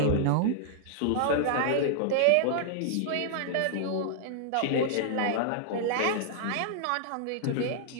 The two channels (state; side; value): different; both; correlation -0.01